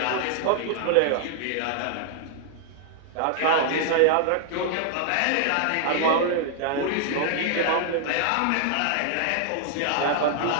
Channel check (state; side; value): different; both; correlation -0.01